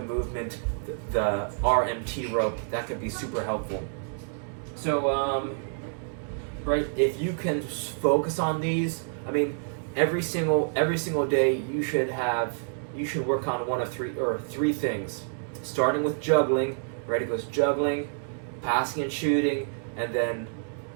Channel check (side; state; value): left; silent; digital silence